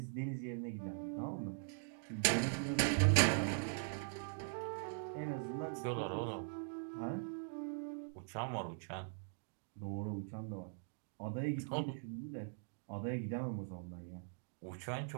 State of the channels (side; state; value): left; silent; digital silence